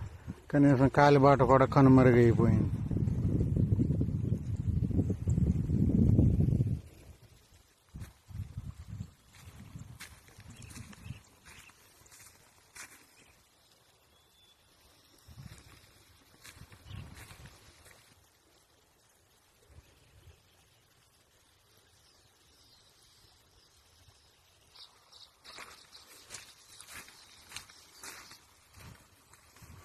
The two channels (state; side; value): identical; both; correlation 1.00